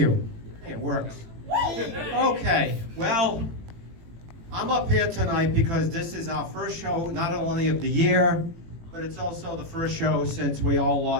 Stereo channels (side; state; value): left; late; 18 ms